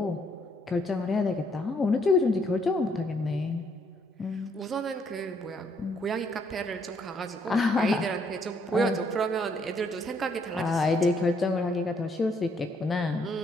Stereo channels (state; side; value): normal; both; correlation 0.70